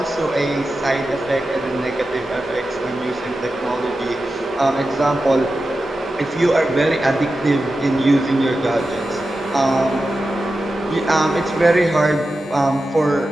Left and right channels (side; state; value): both; normal; correlation 0.92